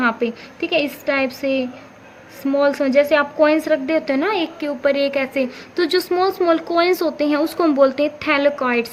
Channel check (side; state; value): both; identical; correlation 1.00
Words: पे, ठीक है, इस टाइप से स्मॉल स्मॉल, जैसे आप कॉइन्स रख देते हैं ना एक के ऊपर एक ऐसे, तो जो स्मॉल स्मॉल कॉइन्स होते हैं उसको हम बोलते हैं